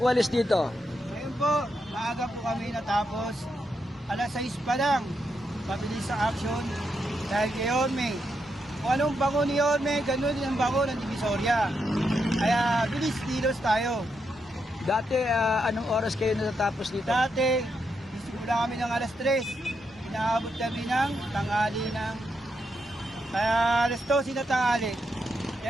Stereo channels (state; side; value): normal; both; correlation 0.82